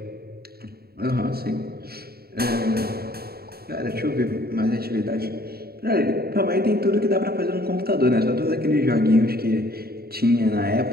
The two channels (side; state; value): left; late; 0.45 ms